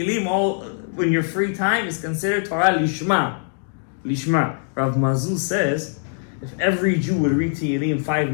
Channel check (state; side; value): silent; right; digital silence